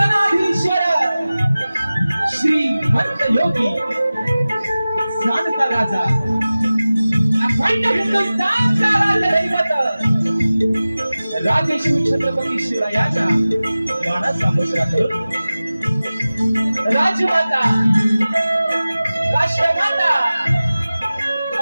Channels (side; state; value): both; inverted; correlation -0.97